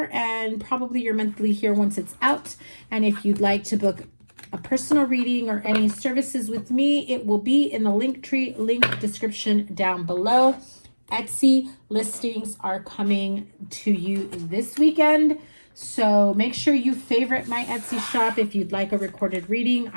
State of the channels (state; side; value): inverted; both; correlation -1.00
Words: and probably your monthly here once it's out. And if you'd like to book a personal reading or any services with me, it will be in the Linktree link description down below. Etsy listings are coming to you this weekend, so make sure you favorite my Etsy shop if you'd like a recorded reading.